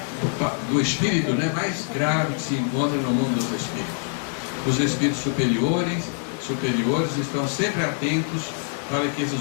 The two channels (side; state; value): right; silent; 57 dB below the other